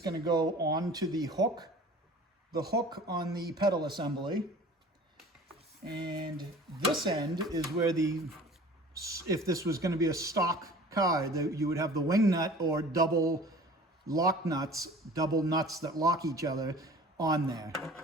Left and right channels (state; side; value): normal; both; correlation 0.44